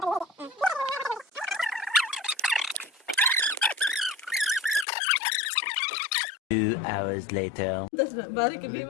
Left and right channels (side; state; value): right; drops out; at 4.9 s